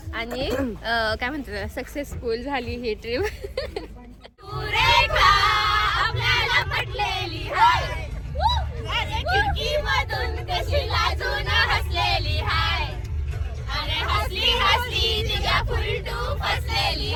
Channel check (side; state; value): both; identical; correlation 1.00